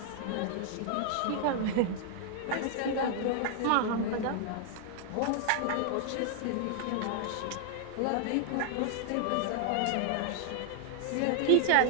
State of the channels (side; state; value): both; different; correlation 0.00